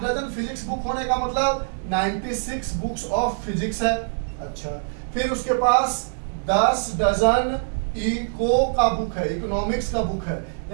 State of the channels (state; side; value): silent; left; digital silence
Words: डजन फिजिक्स बुक होने का मतलब 96 बुक्स ऑफ फिजिक्स है। अच्छा, फिर उसके पास 10 डजन इको का बुक है, इकोनॉमिक्स का बुक है।